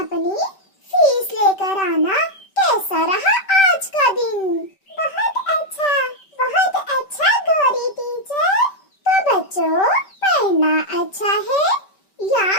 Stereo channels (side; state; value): right; late; 5.2 ms